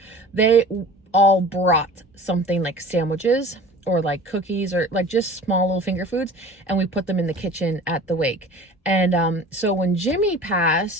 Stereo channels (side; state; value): both; normal; correlation 0.42